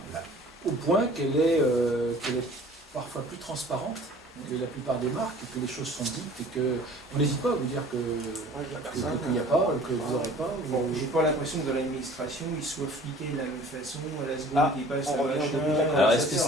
Au point qu'elle est parfois plus transparente que la plupart des marques, que les choses sont dites et qu'on n'hésite pas à vous dire qu'il n'y a pas, que vous n'aurez pas. Bon, j'ai pas l'impression que dans l'administration, ils soient fliqués de la même façon à la seconde qu'ils passent on à revient machin. au début de la Alors est-ce que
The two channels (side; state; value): both; normal; correlation 0.48